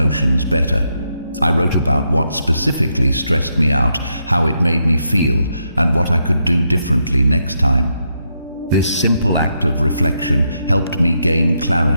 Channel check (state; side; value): inverted; both; correlation -0.80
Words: better. I wrote about what specifically stressed me out, how it made me feel, and what I could do differently next time. This simple act of reflection helped me gain